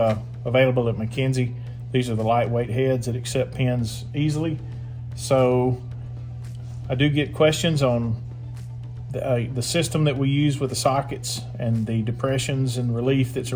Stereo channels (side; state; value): both; identical; correlation 1.00